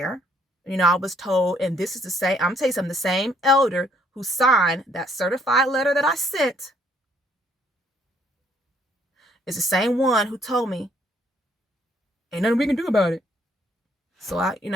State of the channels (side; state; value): both; normal; correlation 0.66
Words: I was told, and this is the same, I'm telling you something, the same elder who signed that certified letter that I sent is the same one who told me, ain't nothing we can do about it. So I ain't